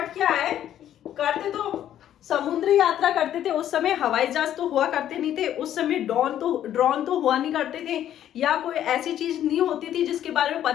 क्या है, करते तो समुद्री यात्रा करते थे। उस समय हवाई जहाज तो हुआ करते नहीं थे, उस समय ड्रोन तो हुआ नहीं करते थे, या कोई ऐसी चीज नहीं होती थी जिसके बारे में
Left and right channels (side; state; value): right; quieter; 11.2 dB